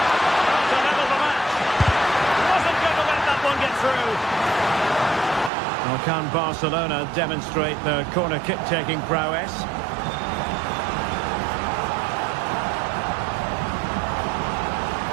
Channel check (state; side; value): drops out; left; at 5.5 s